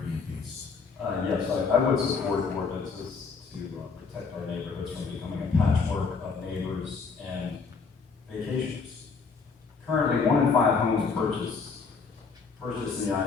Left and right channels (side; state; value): right; quieter; 5.0 dB